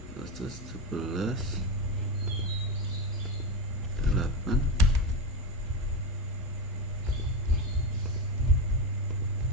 proses 17 8.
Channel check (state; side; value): normal; both; correlation 0.15